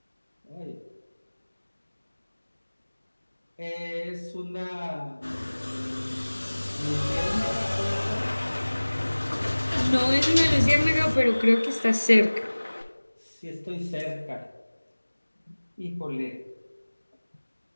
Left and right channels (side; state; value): both; inverted; correlation -1.00